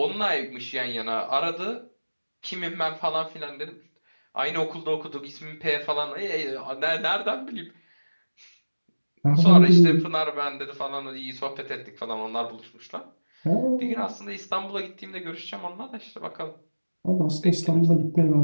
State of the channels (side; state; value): both; inverted; correlation -1.00